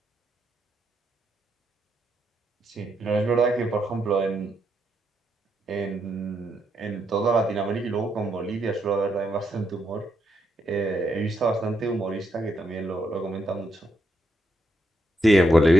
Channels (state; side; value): normal; both; correlation 0.79